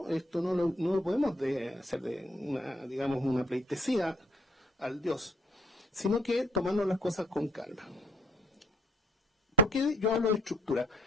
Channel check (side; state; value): both; normal; correlation 0.65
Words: Esto no lo podemos hacer de una pleitesía al Dios, sino que tomarnos las cosas con calma. ¿Por qué yo hablo de estructura?